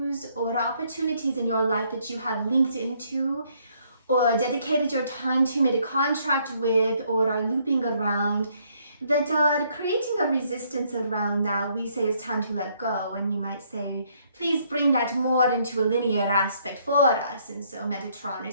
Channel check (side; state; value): both; inverted; correlation -0.68